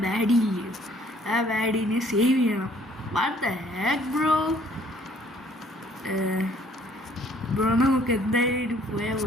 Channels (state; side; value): normal; both; correlation 0.60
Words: ബാഡി, ആ ബാഡീനെ സേവ് ചെയ്യണം. വാട്ട് ദ ഹെക്ക് ബ്രോ നമുക്ക് എന്തായാലും പോയാൽ